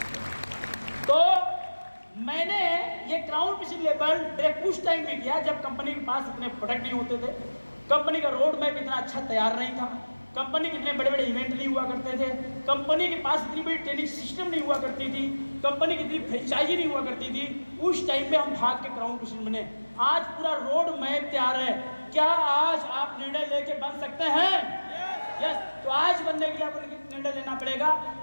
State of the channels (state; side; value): inverted; both; correlation -1.00